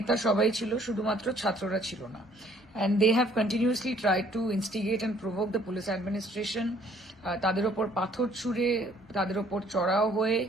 সবাই ছিল, শুধুমাত্র ছাত্ররা ছিল না। And they have continuously tried to instigate and provoke the police administration. তাদের ওপর পাথর ছুঁড়ে, তাদের ওপর চড়াও হয়ে,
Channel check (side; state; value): both; normal; correlation 0.60